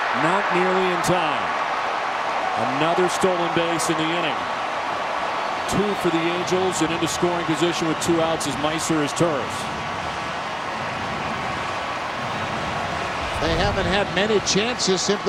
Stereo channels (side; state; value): both; identical; correlation 1.00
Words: not nearly in time. Another stolen base in the inning. 2 for the Angels, and into scoring position with 2 outs as Meiser is Turris. They haven't had many chances